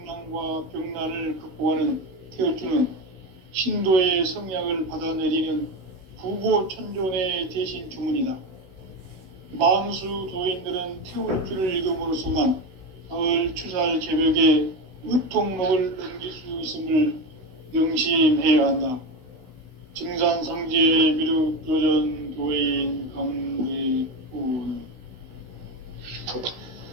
병난을 극복하는 태울주는 신도의 성약을 받아내리는 부고천존의 대신 주문이다. 만수 도인들은 태울주를 읽음으로써만 가을 추살 개벽의 의통록을 넘길 수 있음을 명심해야 한다. 증산상제 미륵조전 도인 강대군.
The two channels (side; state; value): left; late; 16 ms